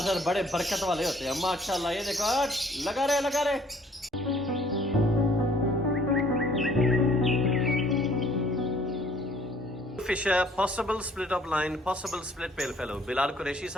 बड़े बरकत वाले होते हैं माशाल्लाह। ये देखो लगा रहे fisher possible split of line, possible split pale fellow Bilal Qureshi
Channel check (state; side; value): normal; both; correlation 0.59